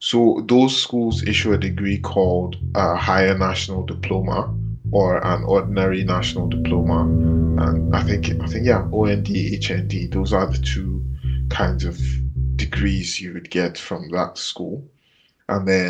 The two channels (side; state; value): both; identical; correlation 1.00